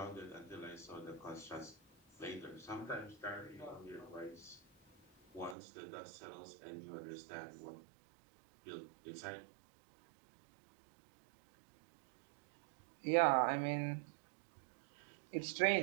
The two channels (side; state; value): left; drops out; at 5.6 s